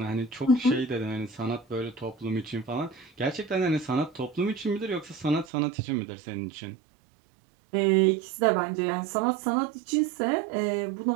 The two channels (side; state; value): left; drops out; at 5.5 s